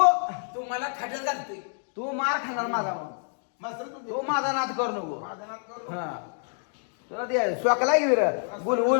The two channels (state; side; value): silent; right; 60 dB below the other